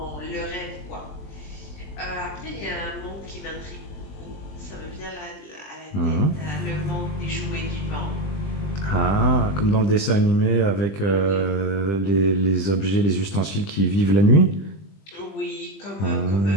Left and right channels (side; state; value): right; late; 20 ms